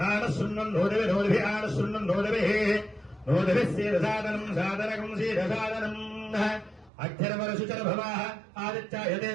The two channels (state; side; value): drops out; left; at 6.9 s